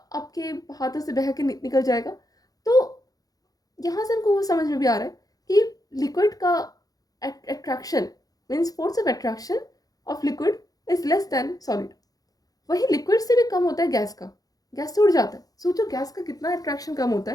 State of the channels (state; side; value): late; right; 0.18 ms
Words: हाथों से बह के निकल जाएगा। तो यहाँ से हमको वो समझ में भी आ रहा है कि लिक्विड का attraction means force of attraction of liquid is less than solid. वही लिक्विड से भी कम होता है गैस का। गैस से उड़ जाता है। सोचो गैस का कितना अट्रैक्शन कम होता